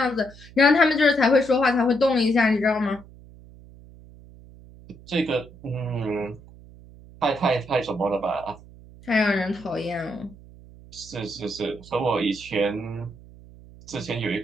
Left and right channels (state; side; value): noise; right; hum, 21 dB below the sound